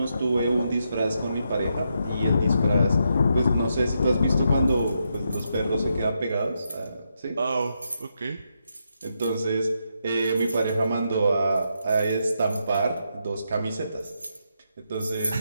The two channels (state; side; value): inverted; both; correlation -0.82